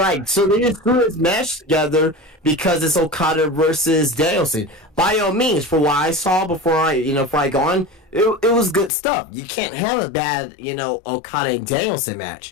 so they just threw this match together because it's Okada versus Danielson. By all means, for what I saw before I go on, it was good stuff. You can't have a bad, Okada and Danielson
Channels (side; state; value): right; drops out; at 8.9 s